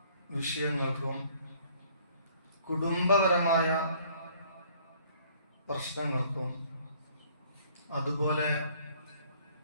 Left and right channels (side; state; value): both; inverted; correlation -0.59